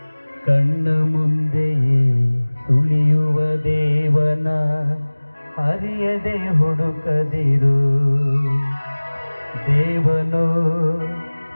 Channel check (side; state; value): both; inverted; correlation -1.00